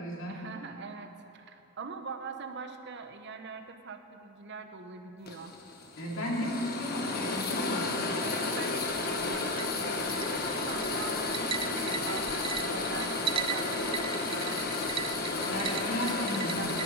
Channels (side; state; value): both; normal; correlation 0.11